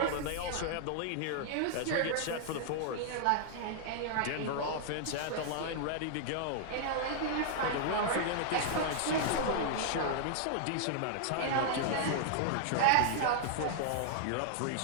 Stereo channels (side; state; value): both; different; correlation -0.01